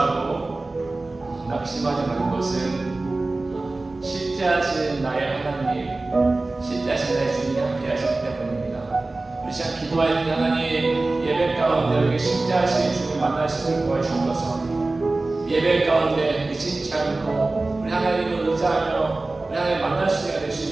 낙심하지 말 것은 실제하신 나의 하나님, 실제하신 나의 주님이 함께 하시기 때문입니다. 우리 시간 기도할 때 하나님 예배 가운데 우리 실제하신 주님 만날 수 있도록 도와주셔서 예배 가운데 의심치 않고 우리 하나님을 의지하며 우리 하나님 만날 수 있게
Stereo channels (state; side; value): quieter; left; 3.2 dB